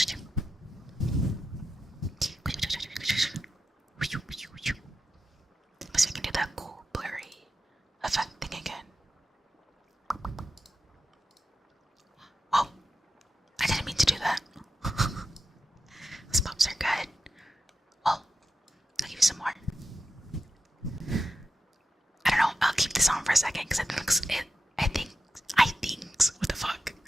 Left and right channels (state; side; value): normal; both; correlation 0.89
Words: Let's see if I can do that cool blurry effect thing again. Oh, I didn't mean to do that. Those pops are good. Well, I'll give you some more. I don't know, I'll keep this on for a second because I think, what the fuck?